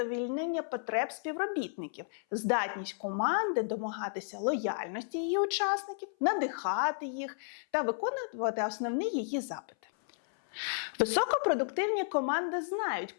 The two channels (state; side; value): silent; right; 56 dB below the other